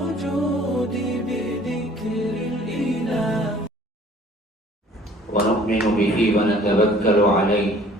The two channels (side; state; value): both; normal; correlation 0.53